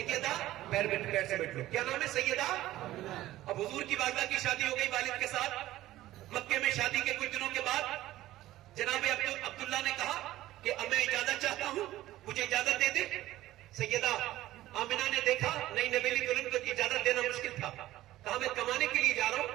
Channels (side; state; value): left; quieter; 15.3 dB